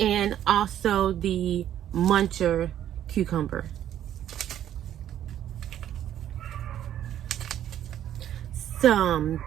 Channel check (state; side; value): quieter; left; 11.1 dB